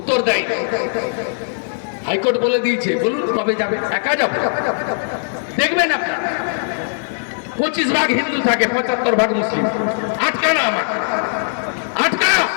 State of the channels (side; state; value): right; silent; 66 dB below the other